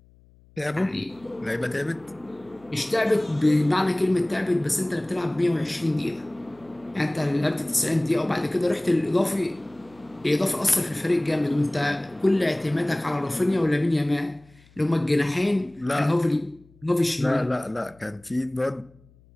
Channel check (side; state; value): left; noise; hum, 28 dB below the sound